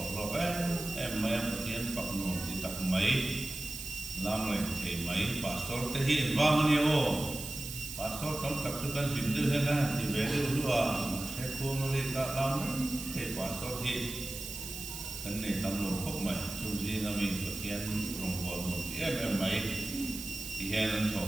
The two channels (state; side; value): noise; right; hiss, 8 dB below the sound